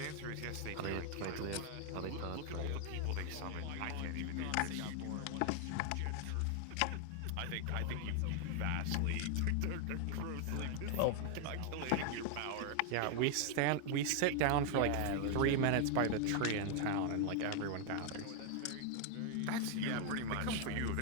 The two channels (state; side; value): different; both; correlation 0.00